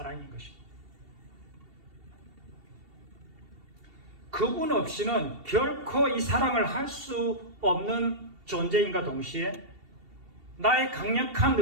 것입니다. 그분 없이는 결코 이 사랑을 할 수 없는 존재인가 동시에 나의 강력한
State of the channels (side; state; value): left; late; 2.7 ms